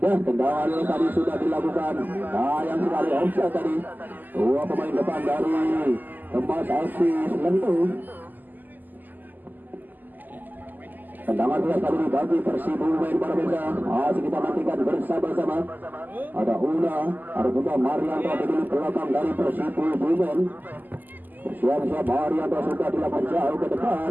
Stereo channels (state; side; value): late; left; 0.086 ms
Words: Ya, tendangan tadi sudah dilakukan. Sayang sekali offside tadi. Dua pemain depan dari Kemas FC tentu. Tendangan keras kali ini bagi Persib pemain para pemirsa. Masih kita nantikan bersama-sama. Ada Una, ada juga Marianto di belakang dari Persib pemain. Siap-siap Marianto sudah dilakukan jauh ke depan.